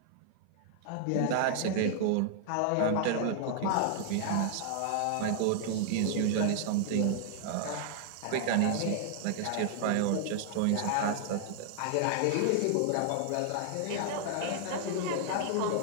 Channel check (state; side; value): different; both; correlation 0.00